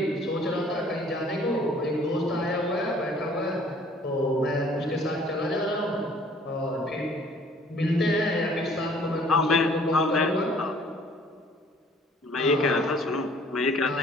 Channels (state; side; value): normal; both; correlation 0.56